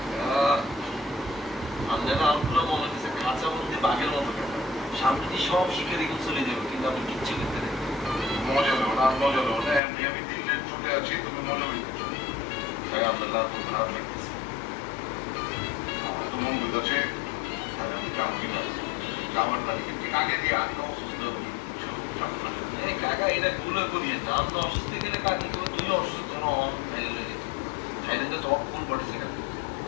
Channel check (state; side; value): drops out; right; at 9.8 s